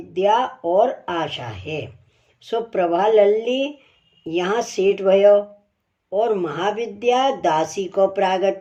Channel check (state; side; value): identical; both; correlation 1.00